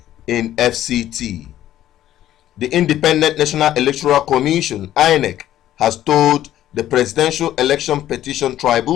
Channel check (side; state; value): right; quieter; 12.7 dB